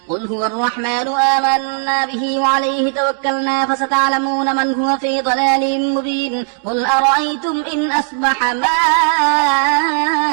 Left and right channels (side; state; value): left; silent; 64 dB below the other